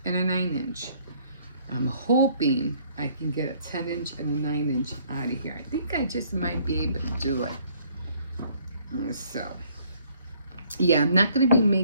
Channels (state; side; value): inverted; both; correlation -0.62